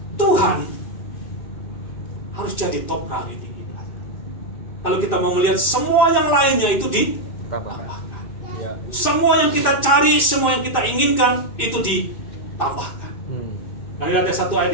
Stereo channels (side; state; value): right; late; 2.6 ms